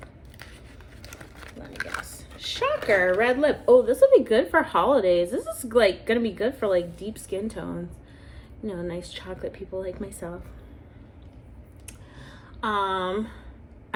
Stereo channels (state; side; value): identical; both; correlation 1.00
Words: Let me guess. Shocker, red lip. Oh, this will be good for holidays. This is like gonna be good for like deep skin tones. You know, nice chocolate people like myself.